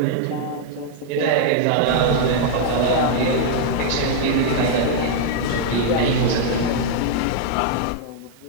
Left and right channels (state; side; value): different; both; correlation -0.01